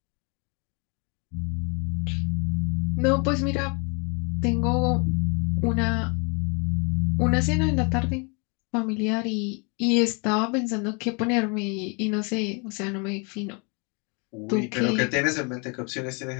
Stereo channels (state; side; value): quieter; right; 33.6 dB